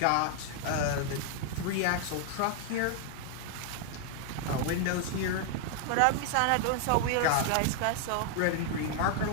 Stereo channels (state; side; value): different; both; correlation 0.00